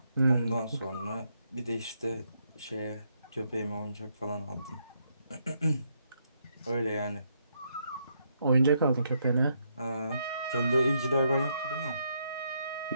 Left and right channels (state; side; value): inverted; both; correlation -0.77